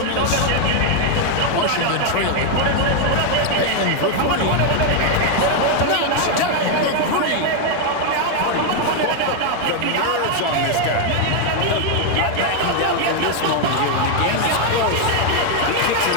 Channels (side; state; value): both; different; correlation 0.01